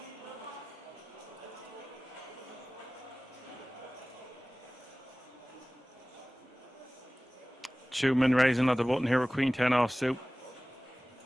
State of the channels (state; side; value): normal; both; correlation 0.98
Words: Schumann raising another button here with Queen 10 offsuit.